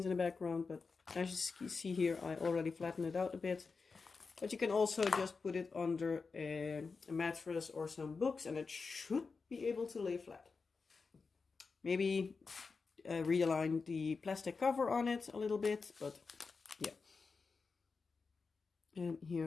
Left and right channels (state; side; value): quieter; right; 4.7 dB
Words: in the background, but as you see here, I already flattened it out a bit. But you can also just put it under a mattress or some books, and it should be able to lay flat. Maybe realign the plastic cover on it a little bit, but yeah. And